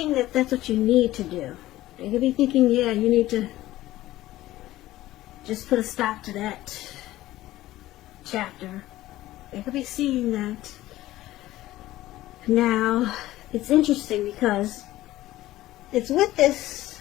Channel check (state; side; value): quieter; right; 15.8 dB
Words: that that's what you need to do. They could be thinking, yeah, you need to just put a stop to that chapter. They could be seeing that. Now, it's interesting because it's with this